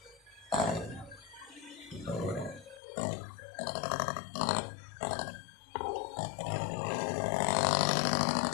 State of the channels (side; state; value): right; drops out; at 2.8 s